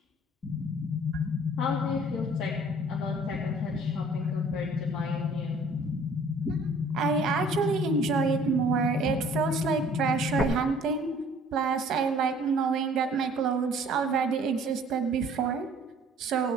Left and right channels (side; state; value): both; normal; correlation 0.54